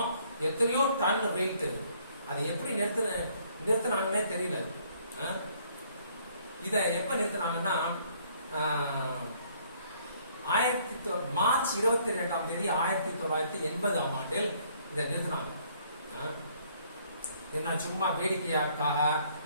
எத்தனையோ டன் வெயிட். அதை எப்படி நிறுத்தினாங்கன்னே தெரியல. இத எப்ப நிறுத்தினாங்கன்னா மார்ச் 22ஆம் தேதி 1980ஆம் ஆண்டில் இதை நிறுத்தினாங்க. என்ன சும்மா வேடிக்கையாக்காக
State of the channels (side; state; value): both; inverted; correlation -0.63